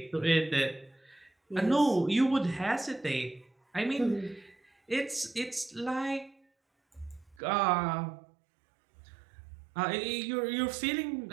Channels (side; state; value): left; drops out; at 7.4 s